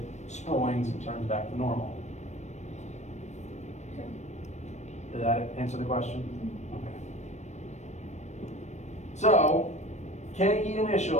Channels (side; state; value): right; late; 0.34 ms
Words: springs and turns back to normal. Okay. Did that answer the question? Okay. So, KE